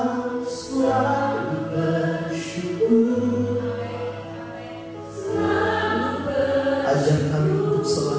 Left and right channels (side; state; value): both; identical; correlation 1.00